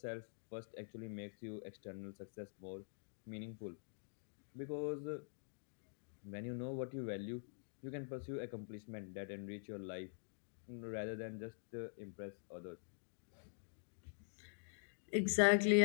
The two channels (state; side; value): silent; right; digital silence